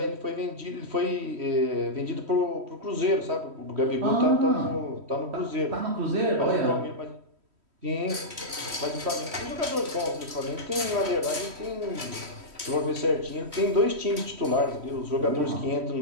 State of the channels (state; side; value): late; left; 3.1 ms